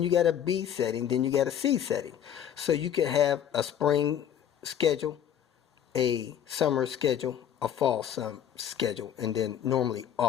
you got a B setting, then you got a C setting. So you can have a spring schedule, a summer schedule, a fall schedule, and then normally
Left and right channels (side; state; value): right; quieter; 9.5 dB